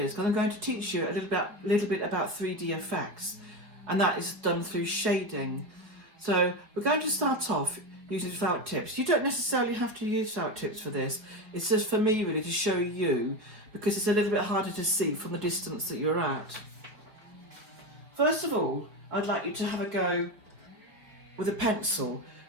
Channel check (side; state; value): left; late; 4.3 ms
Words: because I'm going to teach you a little bit about 3D effects. And that is done through shading. So we're going to start off using felt tips. You don't necessarily have to use felt tips for this. It's just for me really to show you, because it's a little bit harder to see from the distance that you're at. First of all, I'd like you to have a go with a pencil.